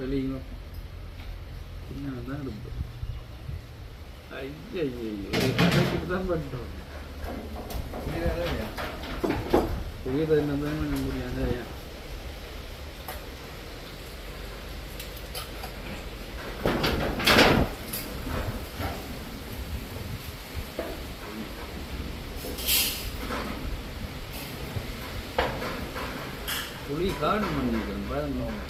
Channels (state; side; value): identical; both; correlation 1.00